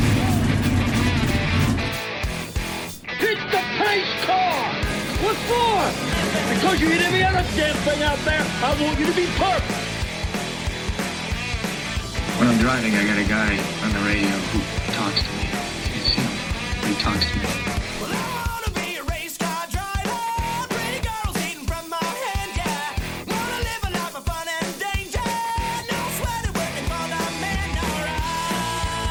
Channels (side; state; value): both; identical; correlation 1.00